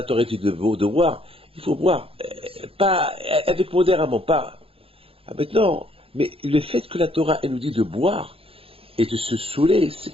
Torah dit de boire, il faut boire. Pas avec modérément, pas. Maintenant, mais le fait que la Torah, elle nous dit de boire et de se saouler,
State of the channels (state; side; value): late; left; 0.27 ms